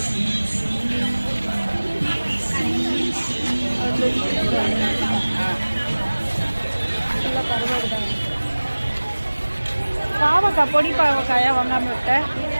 பாவக்காய், பொடி பாவக்காயா வாங்காம விட்டேன்.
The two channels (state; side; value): inverted; both; correlation -1.00